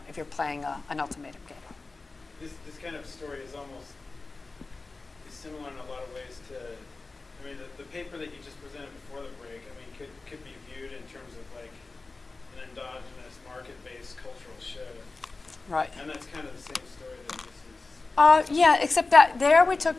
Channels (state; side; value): quieter; right; 3.6 dB